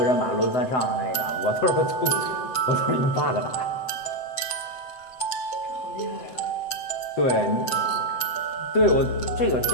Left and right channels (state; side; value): late; right; 7.8 ms